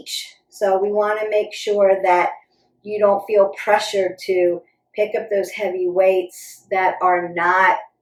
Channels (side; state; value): both; identical; correlation 1.00